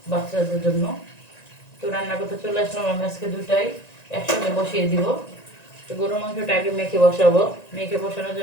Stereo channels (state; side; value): late; right; 1.9 ms